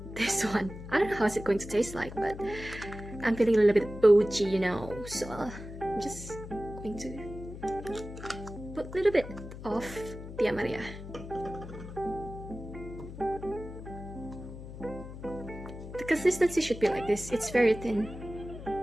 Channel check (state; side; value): noise; left; hum, 12 dB below the sound